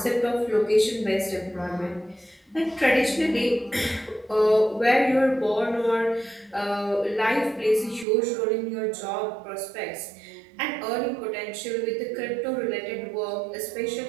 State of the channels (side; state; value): left; drops out; at 8.1 s